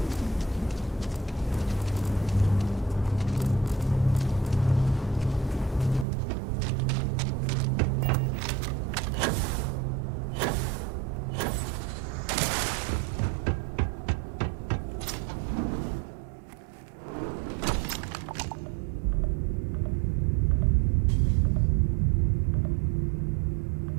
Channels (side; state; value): left; drops out; at 6.1 s